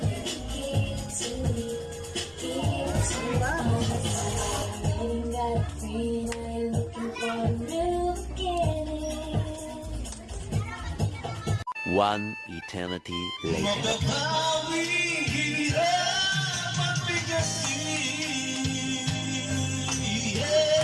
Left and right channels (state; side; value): identical; both; correlation 1.00